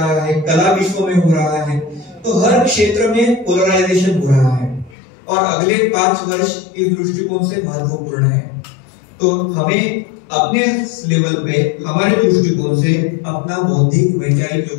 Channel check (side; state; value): right; drops out; at 5.0 s